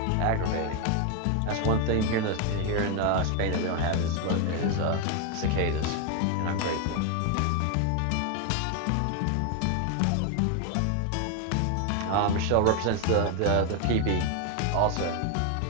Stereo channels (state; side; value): different; both; correlation 0.01